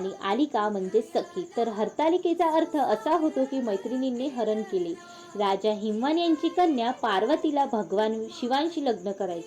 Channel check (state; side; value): identical; both; correlation 1.00